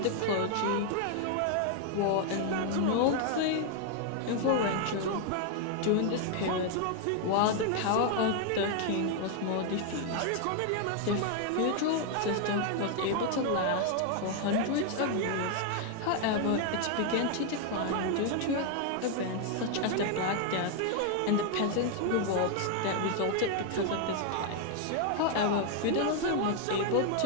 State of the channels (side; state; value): both; different; correlation 0.00